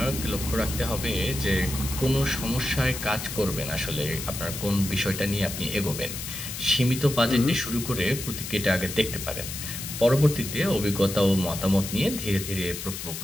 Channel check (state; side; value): noise; left; hiss, 7 dB below the sound